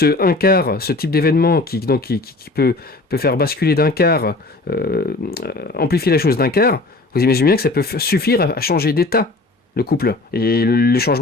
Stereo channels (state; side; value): quieter; right; 3.1 dB